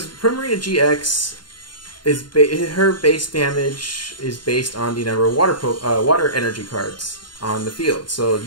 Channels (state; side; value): late; right; 0.71 ms